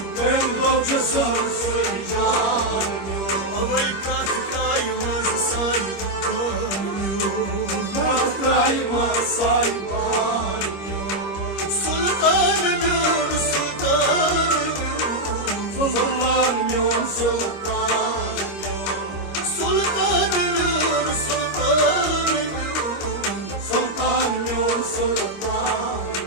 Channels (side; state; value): right; late; 25 ms